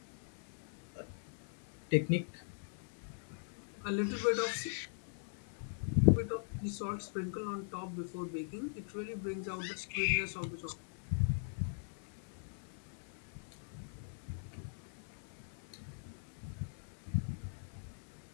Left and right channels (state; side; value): silent; right; 51 dB below the other